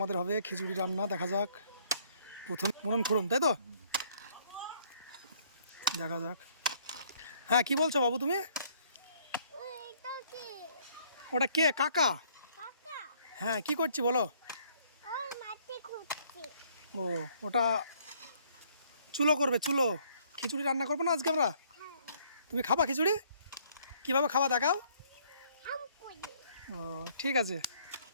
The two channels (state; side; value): inverted; both; correlation -0.63